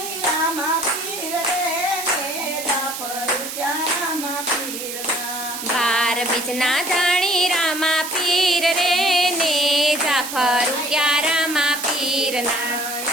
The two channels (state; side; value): noise; right; hiss, 7 dB below the sound